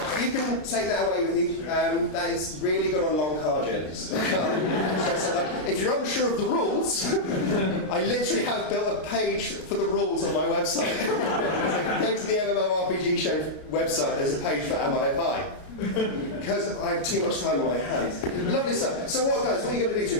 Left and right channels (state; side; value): late; right; 33 ms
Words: You can take that away with you. That is really good on long car journeys. If you're unsure of the rules, I literally have built a page for the rules on my website. So go to the MMORPG show website, there's a page for Am I a Pie? Because I have too much time on my hands. Lovely stuff. So what are you going to do to